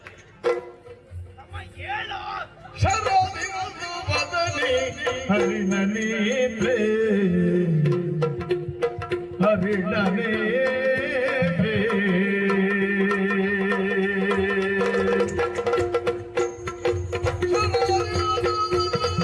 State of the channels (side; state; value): both; identical; correlation 1.00